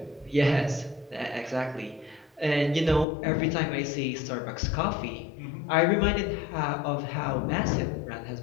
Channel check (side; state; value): right; drops out; at 3.1 s